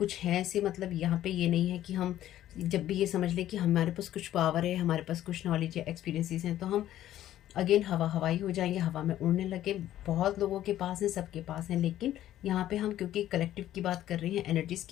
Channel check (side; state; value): right; quieter; 12.8 dB